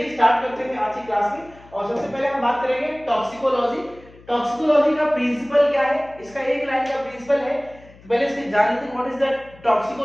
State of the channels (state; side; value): noise; left; hum, 24 dB below the sound